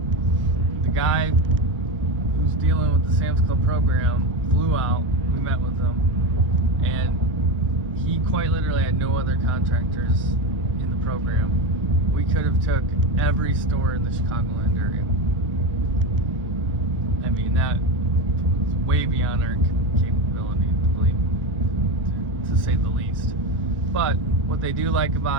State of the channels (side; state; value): both; normal; correlation 0.18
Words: the guy who's dealing with the Sam's Club program flew out. We met with him, and he quite literally had no other contractors in the program. We could have took every store in the Chicagoland area. I mean, that's way beyond our capability, to say the least. But what they do like